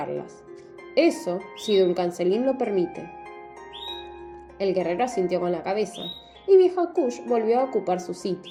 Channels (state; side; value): identical; both; correlation 1.00